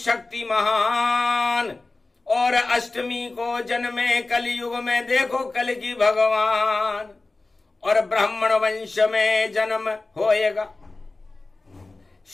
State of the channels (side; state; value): right; quieter; 3.3 dB